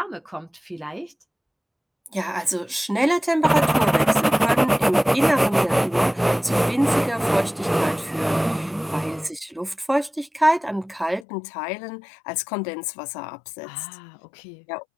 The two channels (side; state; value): right; drops out; at 11.2 s